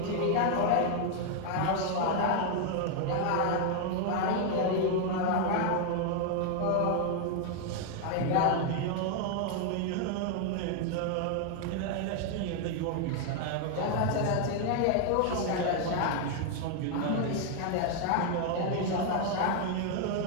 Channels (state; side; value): different; both; correlation 0.00